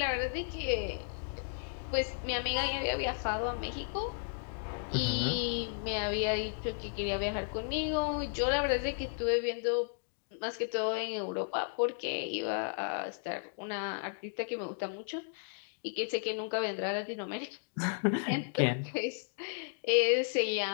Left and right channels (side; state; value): right; silent; digital silence